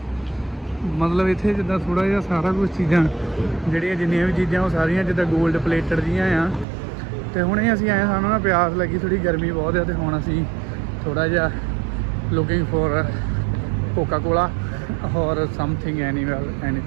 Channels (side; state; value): left; drops out; at 6.7 s